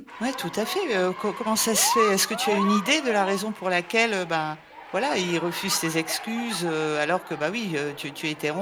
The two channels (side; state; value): both; identical; correlation 1.00